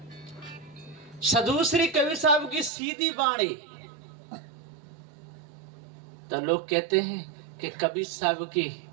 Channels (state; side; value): drops out; left; at 2.7 s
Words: सदगुरु श्री कबीर साहब की सीधी वाणी तो लोग कहते हैं कि कबीर साहब की